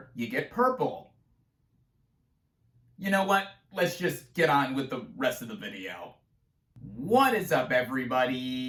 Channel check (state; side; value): identical; both; correlation 1.00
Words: you get purple. You know what? Let's just get on with the rest of the video. What is up,